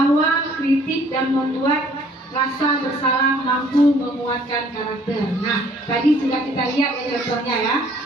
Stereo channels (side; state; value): both; normal; correlation 0.59